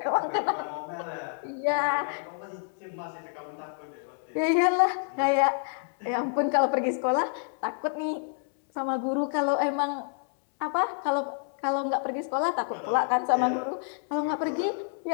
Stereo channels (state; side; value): silent; right; 59 dB below the other